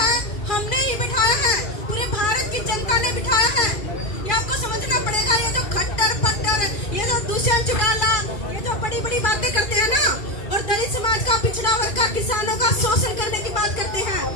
हमने ही बिठाया है, पूरे भारत की जनता ने बिठाया है। ये आपको समझना पड़ेगा। ये जो खट्टर पट्टर, ये जो दुष्यंत चौटाला, ये जो बड़ी बड़ी बातें करते हैं ना, और दलित समाज का, पिछड़ा वर्ग का, किसानों का शोषण करने की बात करते हैं,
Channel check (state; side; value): late; right; 2.4 ms